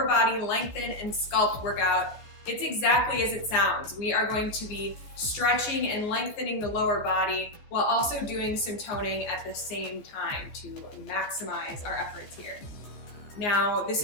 body lengthen and sculpt workout. It's exactly as it sounds. We are going to be stretching and lengthening the lower body while also doing some toning at the same time to maximize our efforts here. Now, this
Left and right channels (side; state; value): right; late; 14 ms